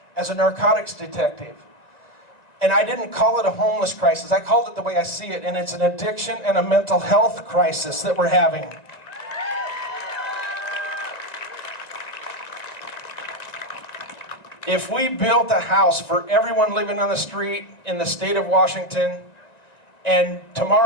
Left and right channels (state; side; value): late; right; 1.9 ms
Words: as a narcotics detective. And I didn't call it a homeless crisis. I called it the way I see it, and it's an addiction and a mental health crisis that we're having. If we built a house for everyone living on the street in the state of Washington, and